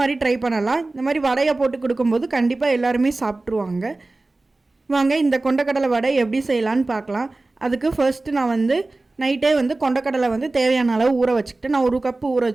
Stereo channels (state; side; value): quieter; left; 3.1 dB